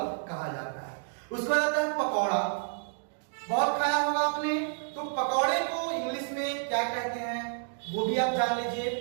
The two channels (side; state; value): left; silent; digital silence